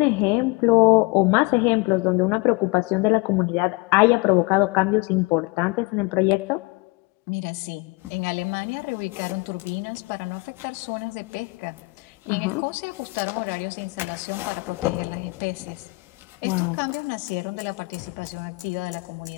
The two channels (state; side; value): quieter; right; 26.5 dB